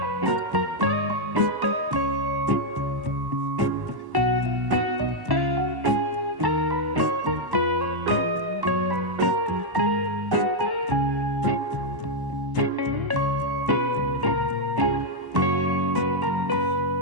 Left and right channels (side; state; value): left; late; 1.1 ms